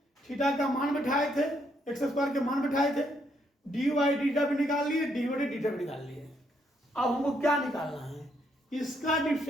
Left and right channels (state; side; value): normal; both; correlation 0.74